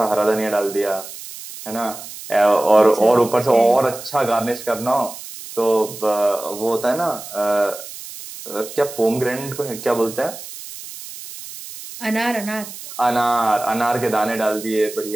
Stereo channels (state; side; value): noise; right; hiss, 13 dB below the sound